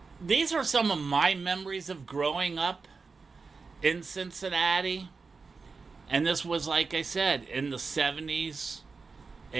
These are some of my memories of growing up in Cincinnati. And this was, like I said, in the 70s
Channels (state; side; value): quieter; left; 4.5 dB